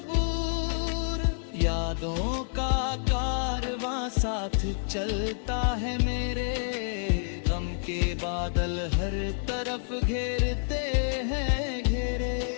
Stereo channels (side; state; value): right; silent; 59 dB below the other